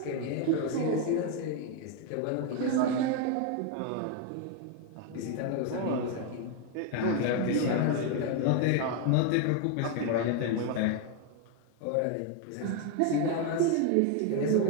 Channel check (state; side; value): different; both; correlation 0.01